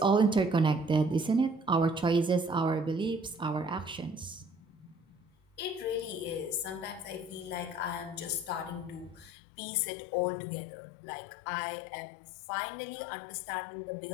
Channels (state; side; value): drops out; right; at 9.3 s